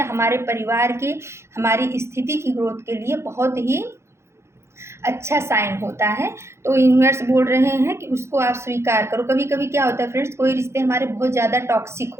हमारे परिवार की, हमारी स्थिति की ग्रोथ के लिए बहुत ही अच्छा साइन होता है। तो यूनिवर्स बोल रहे हैं कि उसको आप स्वीकार करो। कभी कभी क्या होता है फ्रेंड्स, कोई रिश्ते हमारे बहुत ज़्यादा टॉक्सिक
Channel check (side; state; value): left; late; 0.13 ms